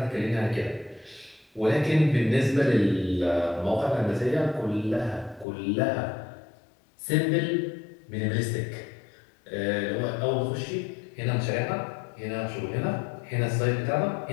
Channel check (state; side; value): drops out; right; at 5.5 s